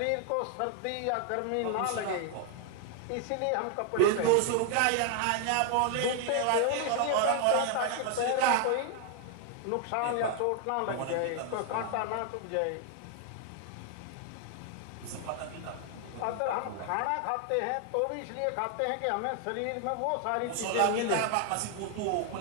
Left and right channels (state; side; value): different; both; correlation 0.00